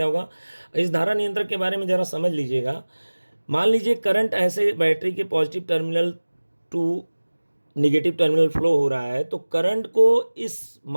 होगा। इस धारा नियंत्रक के बारे में ज़रा समझ लीजिएगा। मान लीजिए करंट ऐसे बैटरी के positive terminal to negative terminal flow हो रहा है, तो करंट को इस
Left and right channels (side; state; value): both; inverted; correlation -1.00